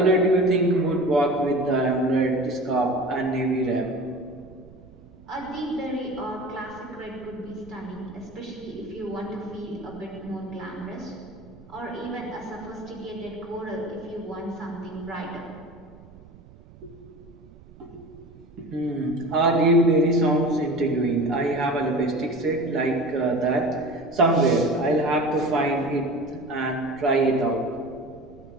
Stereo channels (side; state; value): right; noise; rumble, 22 dB below the sound